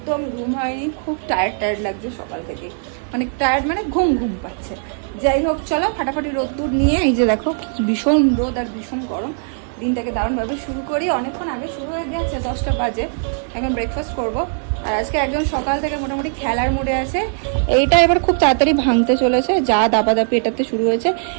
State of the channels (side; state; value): left; silent; 66 dB below the other